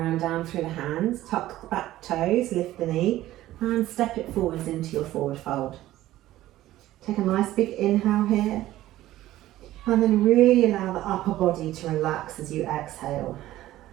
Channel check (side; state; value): left; quieter; 15.0 dB